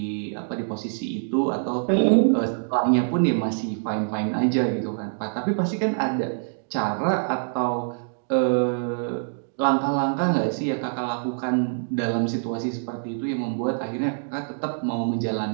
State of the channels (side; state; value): left; silent; digital silence